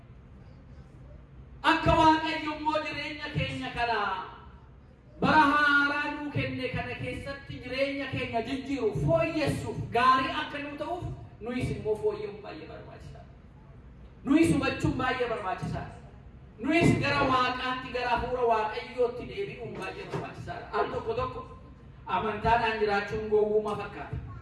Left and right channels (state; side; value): identical; both; correlation 1.00